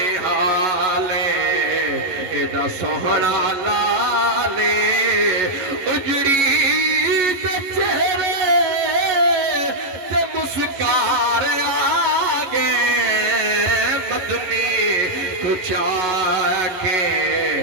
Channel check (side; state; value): left; late; 11 ms